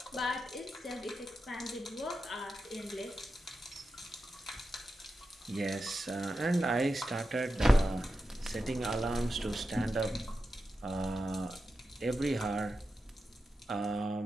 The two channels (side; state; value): both; normal; correlation 0.90